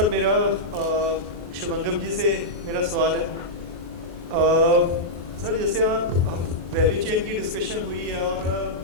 मेरा शुभंगम जी से मेरा सवाल है। सर जैसे आप वैल्यू चेन की डिस्कशन हुई है और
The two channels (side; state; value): left; late; 23 ms